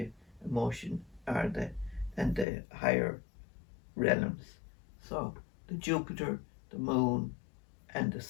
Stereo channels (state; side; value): drops out; right; at 2.5 s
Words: emotion, or the and the higher realms. So the Jupiter, the moon, and the